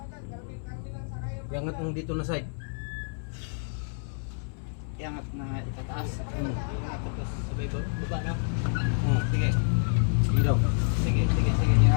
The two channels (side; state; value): right; silent; 59 dB below the other